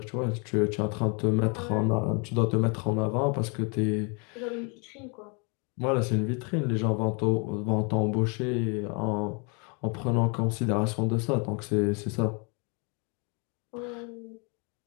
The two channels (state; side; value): quieter; right; 33.8 dB